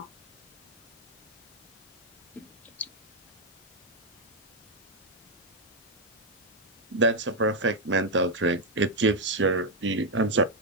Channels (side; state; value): both; normal; correlation 0.00